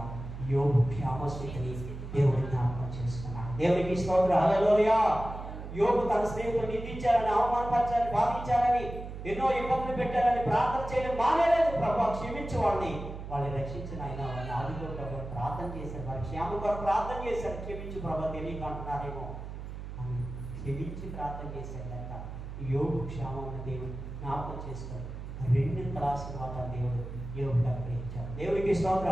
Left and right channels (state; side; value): noise; right; hum, 9 dB below the sound